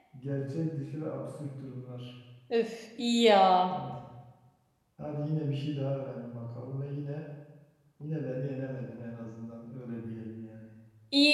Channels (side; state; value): both; identical; correlation 1.00